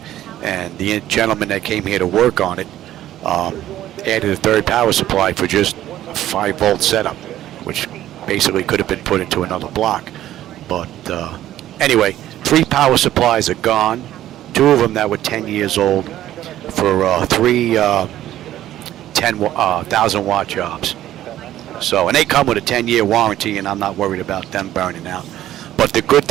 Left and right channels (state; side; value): quieter; left; 13.1 dB